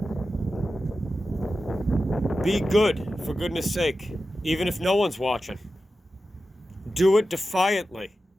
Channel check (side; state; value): both; normal; correlation 0.92